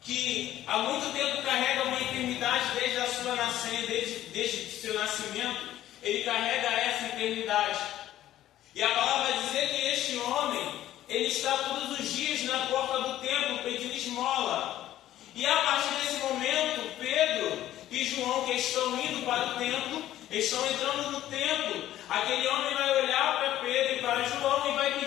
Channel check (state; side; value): quieter; right; 13.2 dB